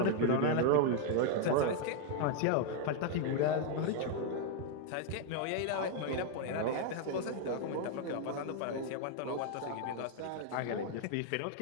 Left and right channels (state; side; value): different; both; correlation 0.00